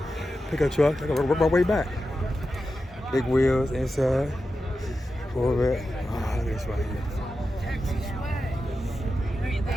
Pickup truck. I gotta work my way back. Big wheels inside. Corvette. Oh, look at this right here.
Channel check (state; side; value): normal; both; correlation 0.91